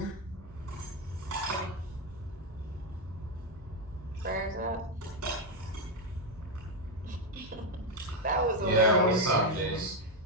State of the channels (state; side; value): normal; both; correlation 0.05